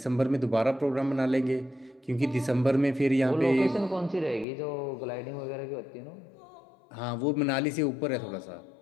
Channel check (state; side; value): drops out; right; at 4.5 s